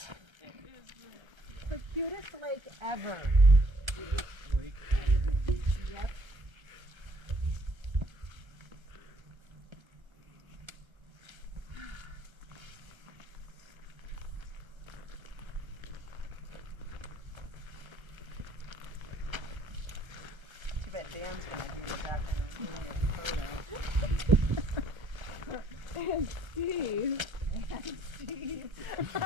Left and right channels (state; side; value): late; left; 1.3 ms